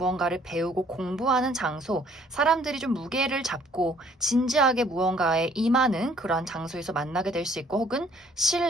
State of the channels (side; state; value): both; normal; correlation 0.60